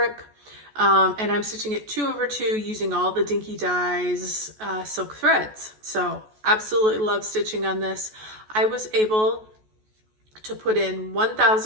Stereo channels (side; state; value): left; late; 14 ms